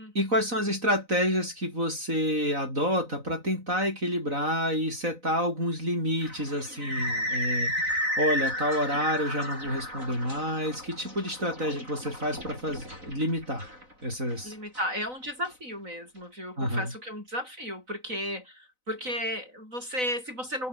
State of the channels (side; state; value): left; late; 4.0 ms